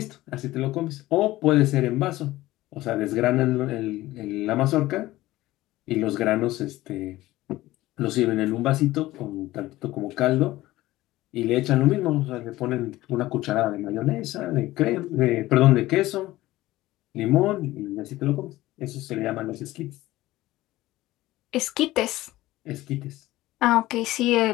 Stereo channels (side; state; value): right; quieter; 17.0 dB